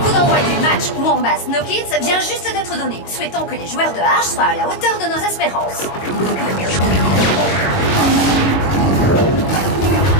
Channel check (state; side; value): late; right; 22 ms